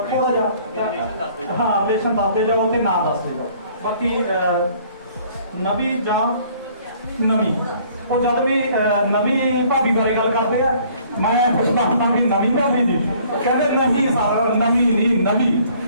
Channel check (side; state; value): both; inverted; correlation -0.57